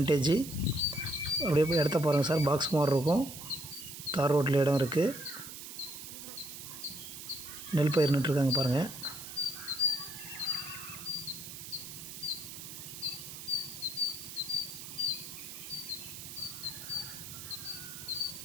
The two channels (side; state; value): right; noise; hiss, 11 dB below the sound